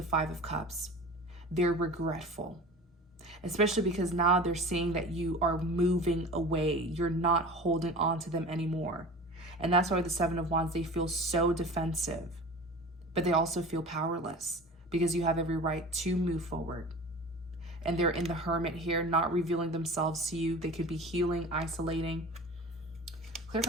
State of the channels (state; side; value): normal; both; correlation 0.37